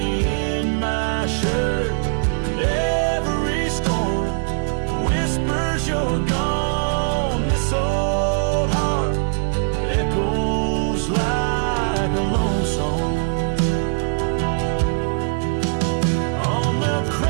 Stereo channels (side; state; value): left; silent; digital silence